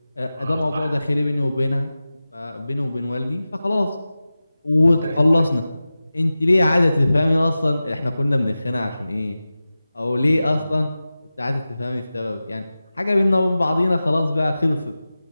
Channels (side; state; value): both; inverted; correlation -0.95